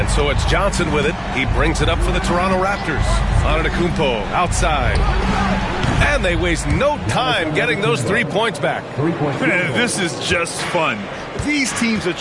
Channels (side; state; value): both; identical; correlation 1.00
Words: so it's Johnson with it. He brings it up for the Toronto Raptors. Antetokounmpo outside. And they waste no time getting those 3 points back. This is just fun. These teams are